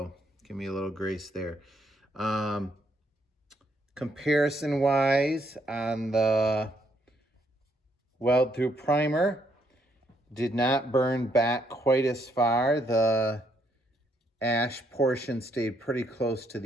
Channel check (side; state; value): both; normal; correlation 0.73